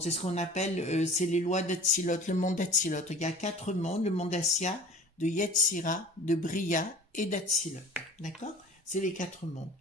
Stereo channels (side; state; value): both; normal; correlation 0.42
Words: C'est ce qu'on appelle, c'est les lois d'Atzilot, le monde d'Atzilot. Il y a 4 mondes, le monde d'Assia, de Yetzira, de Bria et d'Atzilot. D'accord? C'est les 4 mondes.